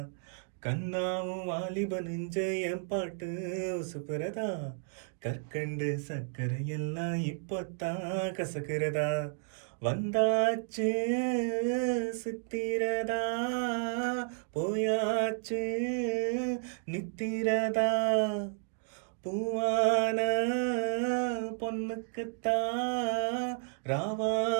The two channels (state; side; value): silent; left; 56 dB below the other